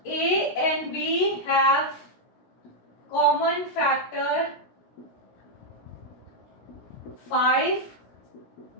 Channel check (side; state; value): right; late; 17 ms